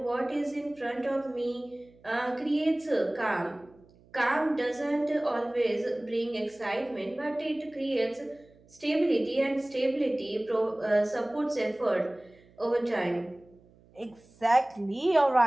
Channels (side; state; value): right; noise; hum, 28 dB below the sound